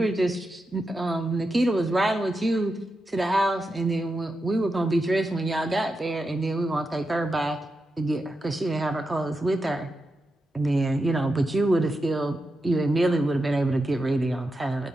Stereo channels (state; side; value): normal; both; correlation 0.88